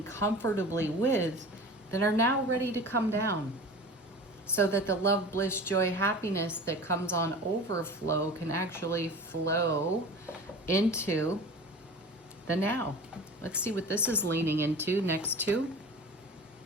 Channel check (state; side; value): normal; both; correlation 0.37